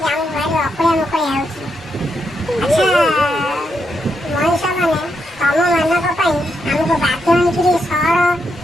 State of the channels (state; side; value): normal; both; correlation 0.82